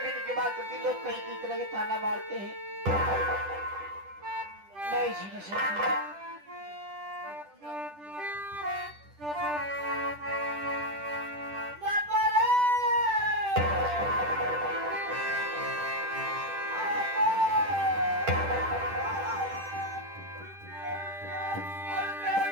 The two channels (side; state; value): left; late; 10 ms